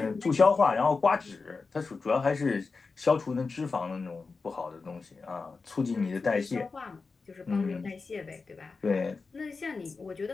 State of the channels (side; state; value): right; quieter; 4.3 dB